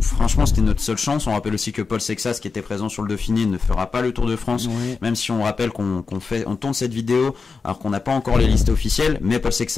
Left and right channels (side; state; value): right; quieter; 4.7 dB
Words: franchement c'était notre seule chance. On rappelle aussi que Paul Sexas, qui était présent sur le Dauphiné, ne fera pas le Tour de France, même si on rappelle qu'on tourne cette vidéo alors qu'on n'a pas encore les listes officielles. Mais Paul